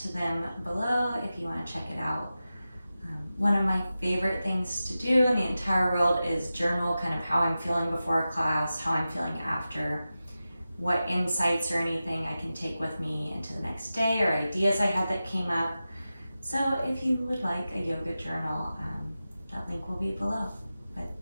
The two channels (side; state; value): both; inverted; correlation -0.94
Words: to them below if you want to check it out. One of my favorite things to do in the entire world is journal kind of how I'm feeling before a class, how I'm feeling after, what insights or anything I can take with me into the next day or ideas I had that came up. So if you would like a yoga journal, that link will be below. But